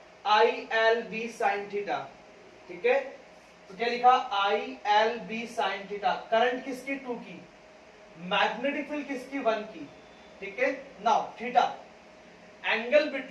ILB sine theta. ठीक है, तो क्या लिखा? ILB sine theta. करंट किसकी? 2 की, मैग्नेटिक फील्ड किसकी? 1 की। ठीक है, now theta angle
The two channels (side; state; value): both; identical; correlation 1.00